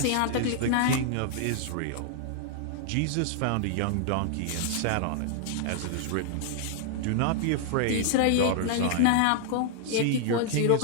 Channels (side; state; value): both; different; correlation -0.01